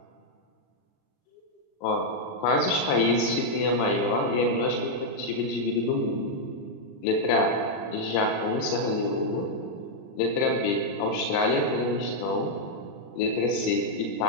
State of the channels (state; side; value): late; right; 40 ms